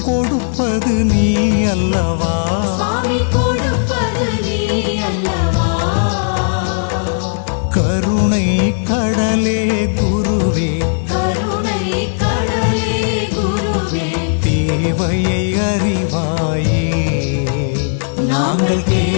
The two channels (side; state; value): right; silent; digital silence